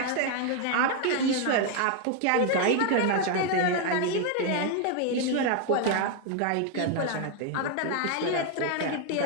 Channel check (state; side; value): different; both; correlation 0.01